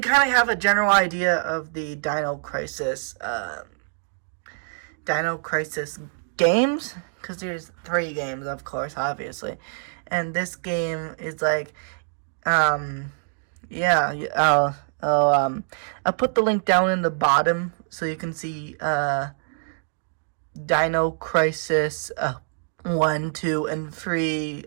of have a general idea of the Dino Crisis games, because there's 3 games, of course, obviously, and this game is I'll put the link down in the bottom so you can see Dino Crisis 1, 2, and 3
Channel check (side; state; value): left; silent; digital silence